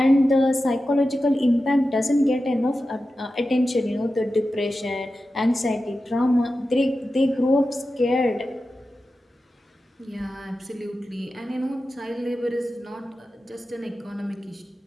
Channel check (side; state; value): both; normal; correlation 0.92